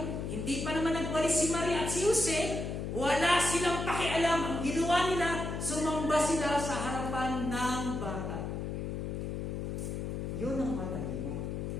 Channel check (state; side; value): noise; left; hum, 4 dB below the sound